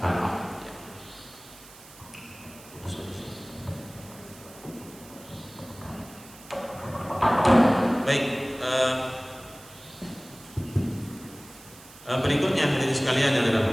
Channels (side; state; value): right; noise; hiss, 20 dB below the sound